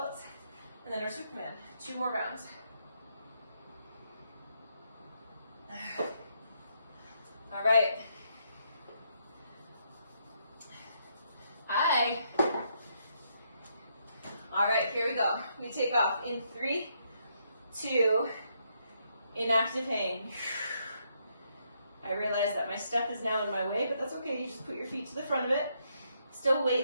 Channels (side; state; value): both; inverted; correlation -0.75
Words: And then our Superman. 2 more rounds. All right. All right, here we go. We take off in 3, 2, inactive hang. I realize that my step is now in my way, but that's okay. You just put your feet to the front of it. Still